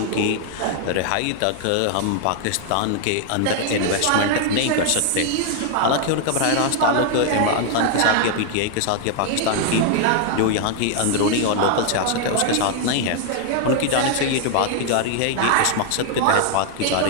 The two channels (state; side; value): different; both; correlation 0.00